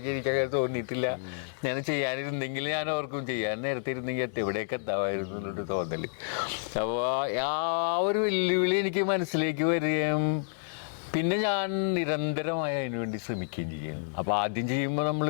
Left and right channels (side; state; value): right; silent; digital silence